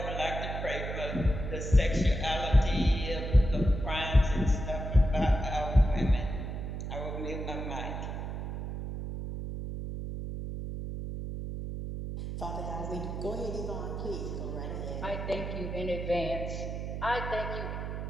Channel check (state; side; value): noise; right; hum, 5 dB below the sound